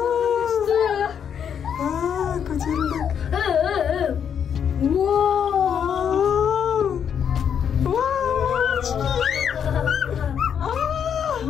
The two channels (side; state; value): right; quieter; 8.1 dB